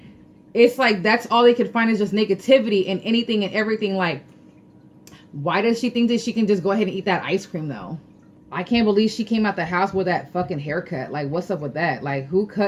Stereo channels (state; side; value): identical; both; correlation 1.00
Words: it's like that's all they could find is just negativity and anything and everything. Like, why does she think that she can just go ahead and eat that ice cream though? I can't believe she came out the house with that fucking haircut. Like, what's up with that? Like, who